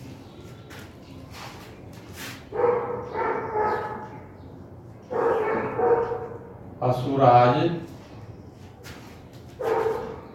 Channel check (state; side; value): identical; both; correlation 1.00